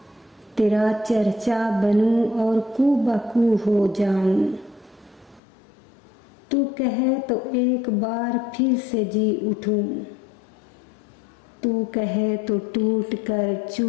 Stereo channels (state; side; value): drops out; right; at 5.4 s